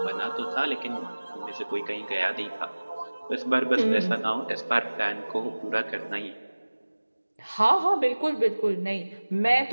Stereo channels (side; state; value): both; inverted; correlation -1.00